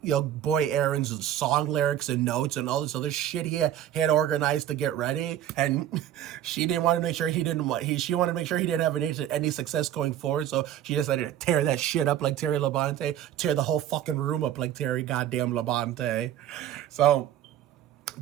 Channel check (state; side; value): quieter; left; 11.4 dB